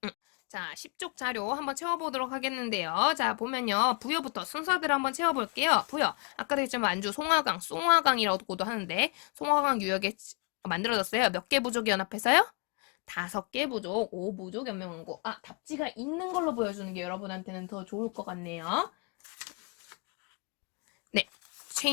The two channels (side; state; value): right; quieter; 34.3 dB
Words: 자, 10쪽 자료 한번 채워보도록 하겠는데요. 자, 보면요. 부여부터 순서대로 한번 채워볼게요. 부여. 아까도 했지만 만주 송화강, 송화강이라고도 하는데 송화강 유역에 만들어졌어요. 몇 개 부족이 연합해서요? 5개 부족, 5부족 연명왕국. 아, 답지가 있는 걸로 보여주는 게 여러분한테는 더 좋을 것 같네요. 네,